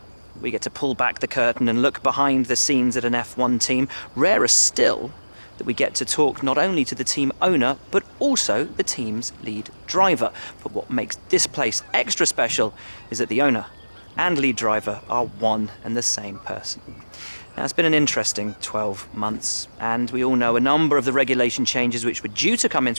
we get to pull back the curtain and look behind the scenes at an F1 team. Rarer still that we get to talk not only to the team owner, but also the team's lead driver. But what makes this place extra special is that the owner and lead driver are one and the same person. Now, it's been an interesting 12 months, and we all know a number of the regulation changes which were due to come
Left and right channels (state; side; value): inverted; both; correlation -1.00